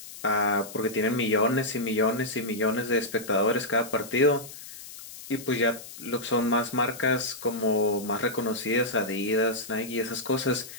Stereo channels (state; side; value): noise; left; hiss, 14 dB below the sound